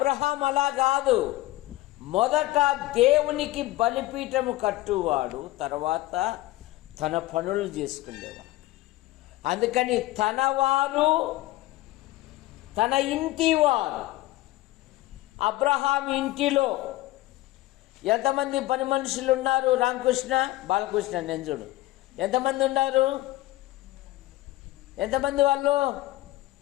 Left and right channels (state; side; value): quieter; right; 17.5 dB